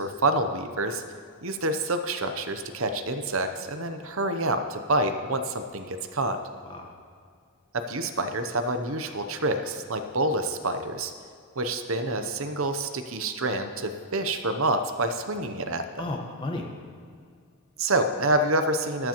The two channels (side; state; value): both; normal; correlation -0.19